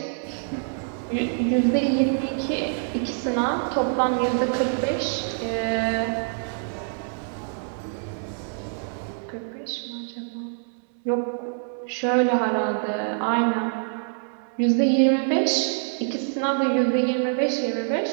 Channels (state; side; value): silent; left; 61 dB below the other